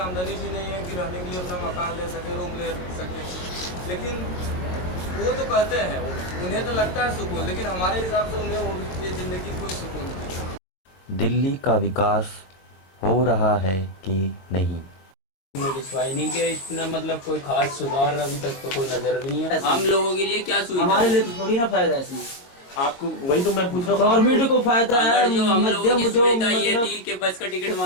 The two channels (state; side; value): late; right; 22 ms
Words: आमदनी भी नहीं है कि रहने के लिए अपना मकान ले सके, रूम ले सके। लेकिन वो तो कहते हैं, उन्हें तो लगता है सुकून, लेकिन हमारे हिसाब से उन्हें वो ये ज़िंदगी कोई सुकून नहीं। दिल्ली का विकास हो रहा है कि नहीं? विश्वास नहीं किया इतना, मतलब कोई खास सुधार अभी तक तो कोई नजर भी नहीं है। हम लोगों के लिए क्या सुविधा? हमारे लिए तो थोड़ी ना फायदा है इसमें। आपको वही तो मैं पूछ रहा हूँ, गवर्नमेंट को फायदा है, जो हम लोगों की मध्यम जो सुविधा ये मतलब थी कि बस का टिकट